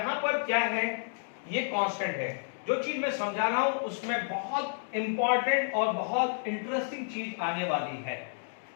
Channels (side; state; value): right; silent; digital silence